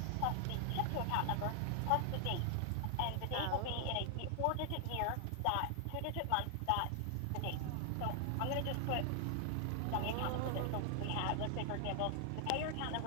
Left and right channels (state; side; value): different; both; correlation 0.00